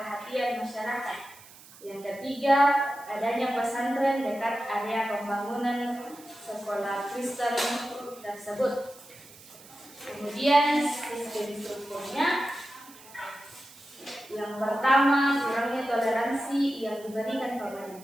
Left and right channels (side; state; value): right; noise; hiss, 21 dB below the sound